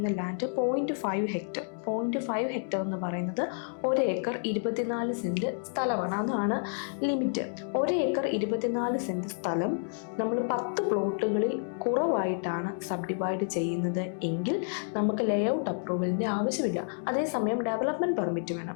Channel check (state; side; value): silent; right; digital silence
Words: ലാൻഡ് 0.5 ഹെക്ടർ 0.5 ഹെക്ടർ എന്ന് പറയുന്നത് 1 ഏക്കർ 24 സെൻറ്റ് സ്ഥലമാണ്. അതാണ് ലിമിറ്റ്. 1 ഏക്കർ 24 സെൻറ്റ് സ്ഥലം നമ്മൾ 10 പ്ലോട്ടുകളിൽ കുറവായിട്ടാണ് സബ് ഡിവൈഡ് ചെയ്യുന്നത് എങ്കിൽ നമുക്ക് ലേ ഔട്ട് അപ്രൂവലിൻ്റെ ആവശ്യമില്ല. അതേസമയം ഡെവലപ്മെൻറ്റ് പെർമിറ്റ് വേണം.